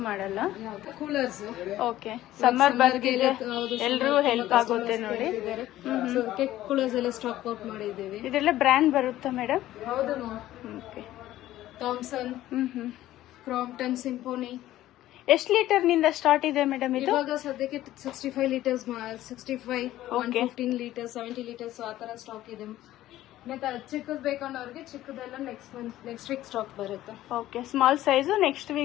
ಮಾಡಲ್ಲ? ಕೂಲರ್ಸ್. ಓಕೆ. ಸಮ್ಮರ್ ಬರ್ತಿದೆ, ಎಲ್ರೂ ಹೆಲ್ಪ್ ಆಗುತ್ತೆ ನೋಡಿ. ಕೂಲರ್ಸ್ ಎಲ್ಲ ಸ್ಟಾಕ್ ಔಟ್ ಮಾಡಿದ್ದೀವಿ. ಇದೆಲ್ಲ ಬ್ರ್ಯಾಂಡ್ ಬರುತ್ತಾ ಮೇಡಮ್? ಹೌದು. ಓಕೆ. Thomson, Crompton, symphony. ಎಷ್ಟು ಲೀಟರ್ ನಿಂದ ಸ್ಟಾರ್ಟ್ ಇದೆ ಮೇಡಮ್ ಇದು? ಇವಾಗ ಸದ್ಯಕ್ಕೆ 65 ಲೀಟರ್ಸ್, 65, 115 ಲೀಟರ್ಸ್, 70 ಲೀಟರ್ಸ್ ಆ ತರ ಸ್ಟಾಕ್ ಇದೆ. ಮತ್ತೆ ಚಿಕ್ಕದ್ ಬೇಕನ್ನೋರಿಗೆ ಚಿಕ್ಕದೆಲ್ಲ ನೆಕ್ಸ್ಟ್ ವೀಕ್ ಸ್ಟಾಕ್ ಬರುತ್ತೆ. Okay. Small size next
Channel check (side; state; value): right; quieter; 14.4 dB